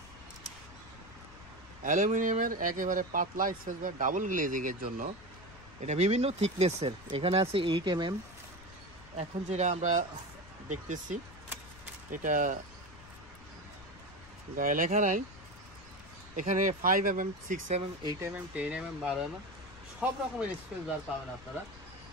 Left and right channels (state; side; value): noise; left; rumble, 19 dB below the sound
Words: অ্যালুমিনিয়ামের একেবারে পাতলা স্পেস বার, ডাবল গ্লেজিং এর জন্য। এটা বিভিন্ন থিকনেসের, এখানে আছে 8 mm। এখন যেটা আমরা দেখতেছি এটা গায়ে লেখা নাই, এখানে 5 mm, 6 mm, 8 mm, 10 mm, 12 mm সব রকমের স্পেস বার পাবেন আপনারা।